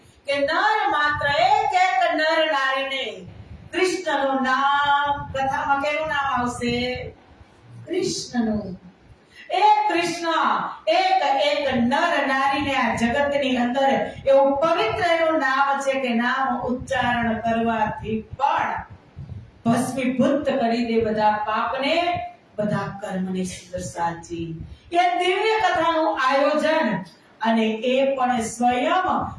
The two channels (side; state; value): both; identical; correlation 1.00